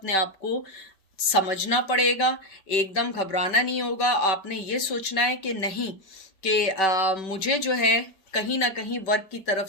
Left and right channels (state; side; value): late; right; 5.2 ms